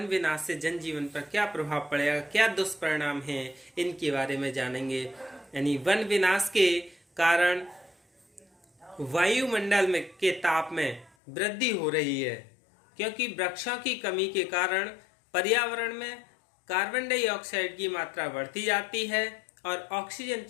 विनाश से जनजीवन पर क्या प्रभाव पड़ेगा, क्या दुष्परिणाम हैं, इनके बारे में जानेंगे। यानी वन विनाश के कारण वायुमंडल में के ताप में वृद्धि हो रही है, क्योंकि वृक्षों की कमी के कारण पर्यावरण में कार्बन डाइऑक्साइड की मात्रा बढ़ती जाती है और ऑक्सीजन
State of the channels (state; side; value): drops out; right; at 11.1 s